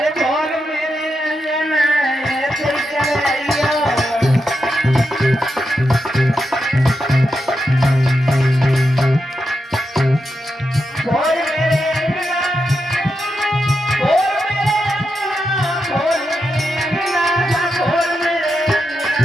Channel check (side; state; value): both; normal; correlation 0.86